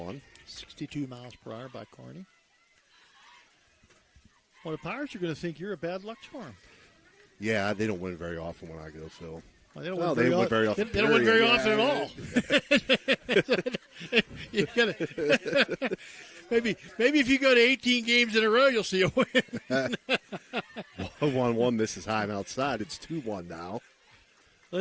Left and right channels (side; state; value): both; identical; correlation 1.00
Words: 62 miles per hour by Kearney. Well, the Pirates are going to think you're a bad luck charm. Yeah, they don't win very often when I go, Phil. Well, they don't win very often. They don't win very often at all. You gotta, maybe if you go to 18 games in a row, you'll see a win. 1-1. This is high and outside. It's 2-1 now.